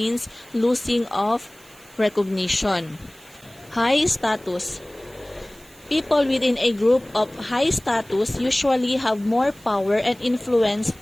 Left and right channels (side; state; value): right; noise; hiss, 25 dB below the sound